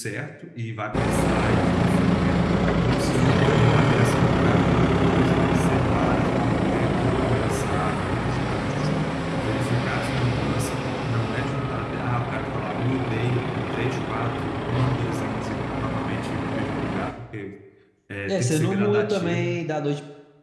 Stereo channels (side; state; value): both; identical; correlation 1.00